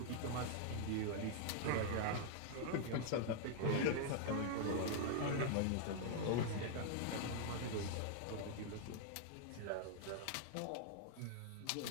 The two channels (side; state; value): both; different; correlation -0.01